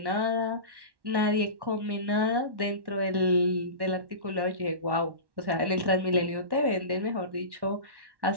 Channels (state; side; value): late; left; 1.1 ms